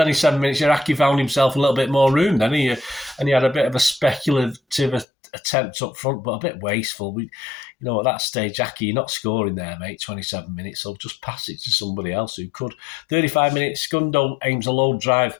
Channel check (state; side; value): drops out; right; at 5.1 s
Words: minutes, Iraqi found himself a little bit more room then, and he had a bit of a speculative attempt up front, but a bit wasteful. At that stage, Aki, you're not scoring there, mate, 27 minutes, so just pass it to somebody else who could. 35 minutes, Gundo aims a low drive